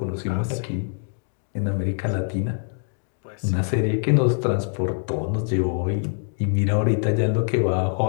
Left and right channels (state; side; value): silent; right; digital silence